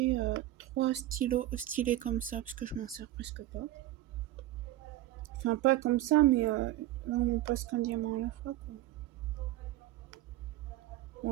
3 stylos stylés comme ça, parce que je m'en sers presque pas. Enfin, pas comme ça, mais là on passe qu'un diamant à la fois, quoi.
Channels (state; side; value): quieter; left; 14.8 dB